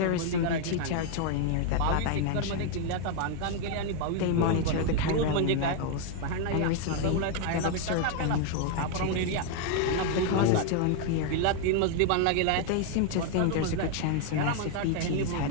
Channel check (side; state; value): both; different; correlation 0.00